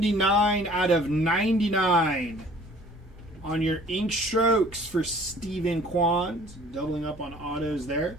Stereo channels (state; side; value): normal; both; correlation 0.52